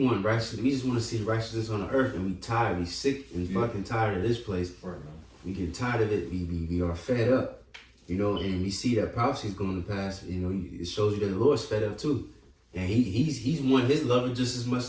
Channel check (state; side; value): identical; both; correlation 1.00